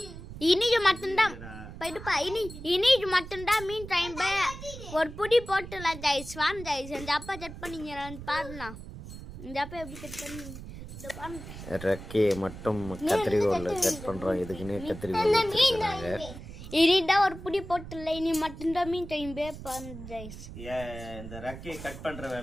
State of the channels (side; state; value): right; noise; rumble, 12 dB below the sound